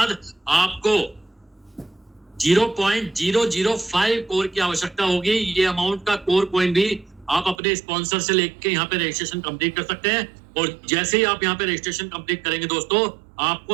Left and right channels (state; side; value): drops out; left; at 7.6 s